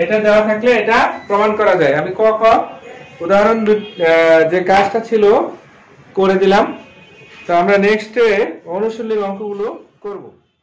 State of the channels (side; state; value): both; identical; correlation 1.00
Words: এটা দেওয়া থাকলে এটা প্রমাণ করা যায়। আমি উদাহরণ যে কাজটা ছিল করে দিলাম। তো আমরা নেক্সটে অনুশীলনী অঙ্কগুলো করব।